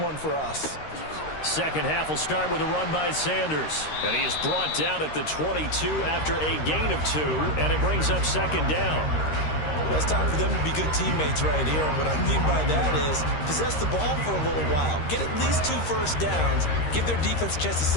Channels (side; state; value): right; late; 13 ms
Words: for us. 2nd half will start with a run by Sanders. And he is brought down at the 22 after a gain of 2, and it brings up 2nd down. Well, it's time for them to be good teammates right here. And what I mean by that is possess the ball for a little while. Get at least 2 first downs. Give their defense a chance to